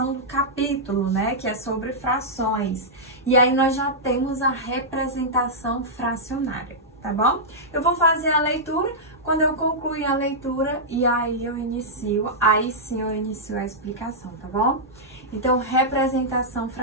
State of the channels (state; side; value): normal; both; correlation -0.11